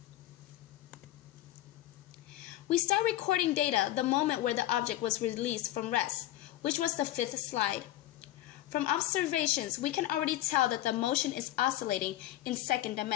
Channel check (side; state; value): right; quieter; 14.5 dB